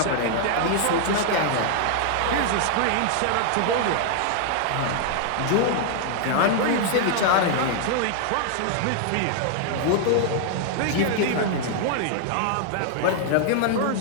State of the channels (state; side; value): different; both; correlation 0.00